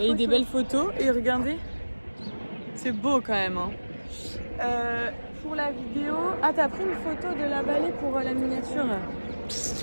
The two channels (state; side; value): inverted; both; correlation -1.00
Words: des belles photos. Et regardez, c'est beau quand même. Hein. Pour la vidéo... Ah, t'as pris une photo de la vallée pour la miniature?